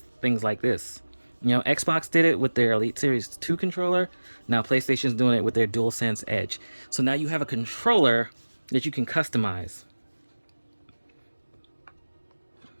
things like this. You know, Xbox did it with their Elite Series 2 controller. Now PlayStation's doing it with their DualSense Edge. So now you have a controller that you can customize.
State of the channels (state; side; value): inverted; both; correlation -1.00